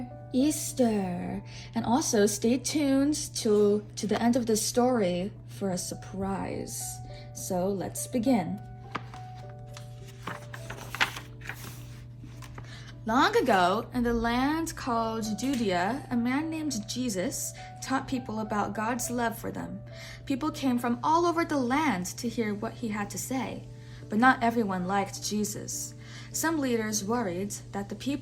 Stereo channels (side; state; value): both; identical; correlation 1.00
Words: Easter. And also stay tuned to the end of the story for a surprise. So let's begin. Long ago, in the land called Judea, a man named Jesus taught people about God's love for them. People came from all over the land to hear what he had to say, but not everyone liked Jesus. Some leaders worried that the